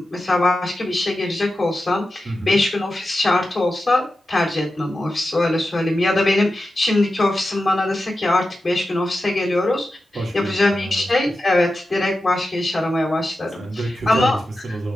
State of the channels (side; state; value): both; normal; correlation 0.92